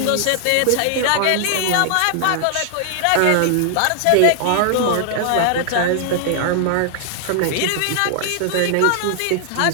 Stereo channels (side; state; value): both; different; correlation 0.00